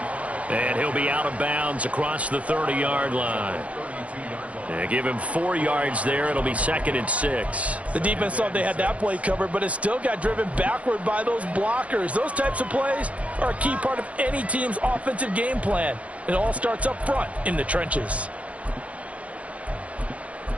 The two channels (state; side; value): late; left; 0.065 ms